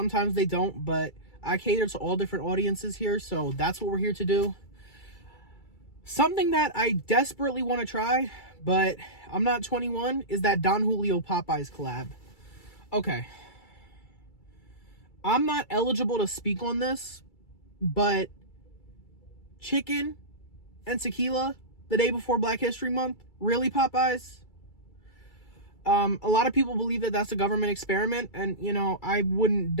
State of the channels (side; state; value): right; late; 2.3 ms